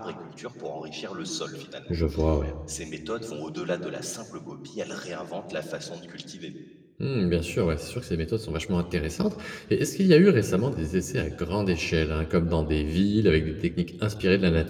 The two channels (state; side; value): identical; both; correlation 1.00